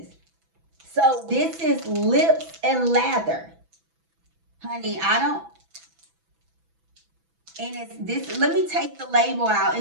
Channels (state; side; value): late; left; 6.0 ms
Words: So this is lips and lather. Honey, I don't, and it's this, let me take the label out,